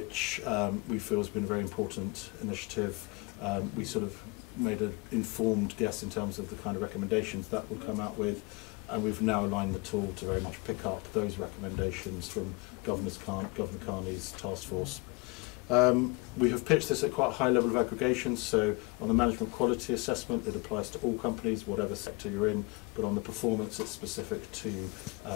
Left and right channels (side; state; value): right; quieter; 27.5 dB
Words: we feel has been a very important initiative. We sort of made an informed guess in terms of the kind of recommendations that would come out with, and we've now aligned the tool to very much pick up those recommendations from Governor Carney's task force. We have pitched this at quite a high level of aggregation, so on the management quality assessment it applies to all companies, whatever sector you're in, but on the performance it's specific to